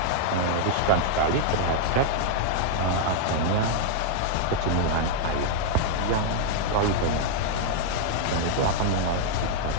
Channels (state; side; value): different; both; correlation -0.01